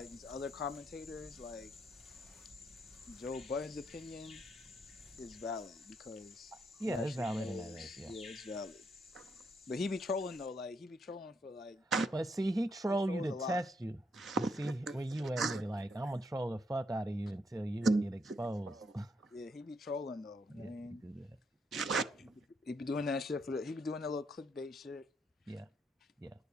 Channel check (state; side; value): normal; both; correlation 0.77